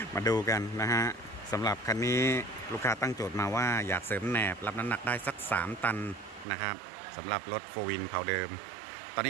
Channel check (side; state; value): left; drops out; at 6.5 s